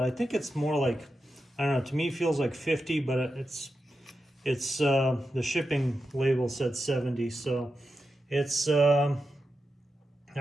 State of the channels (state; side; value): normal; both; correlation 0.89